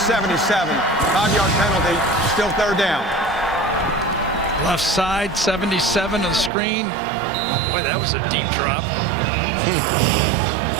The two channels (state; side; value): drops out; left; at 6.5 s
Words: 5-yard penalty, still 3rd down. Left side, 77 on the screen. Boy, that was a deep drop.